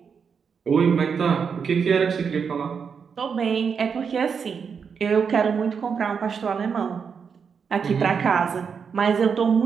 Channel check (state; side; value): quieter; left; 6.3 dB